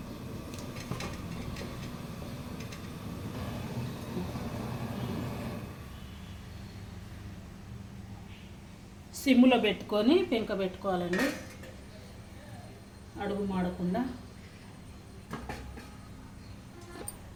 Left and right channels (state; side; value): identical; both; correlation 1.00